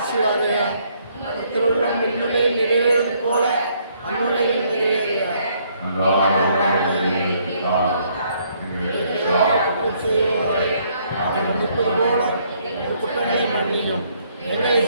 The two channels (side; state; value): both; inverted; correlation -0.68